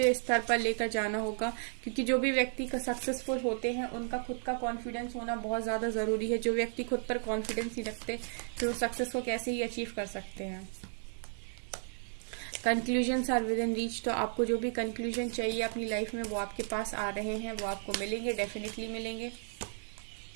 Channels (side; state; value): left; silent; 55 dB below the other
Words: स्तर पर लेकर जाना होगा, क्योंकि जो भी व्यक्ति का सक्सेसफुल होते हैं उनका खुद का कॉन्फिडेंस होना बहुत ज़्यादा ज़रूरी है। जो व्यक्ति खुद पर कॉन्फिडेंस नहीं रखते तो सक्सेस को कैसे ही अचीव कर सकते हैं। Conclusions are within reach. तो आपको जो भी कंक्लूजन चाहिए अपनी लाइफ में वो आपके पास आ रहे हैं, वो आपको मिलेंगे, डेफिनेटली मिलेंगे।